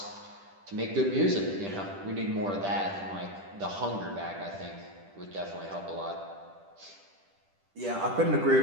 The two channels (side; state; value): left; late; 10 ms